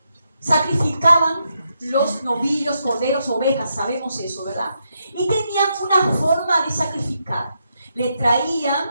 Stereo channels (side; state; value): both; inverted; correlation -0.81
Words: sacrificaban los novillos, corderos, ovejas, sabemos eso, ¿verdad? Y tenían una forma de sacrificar. Le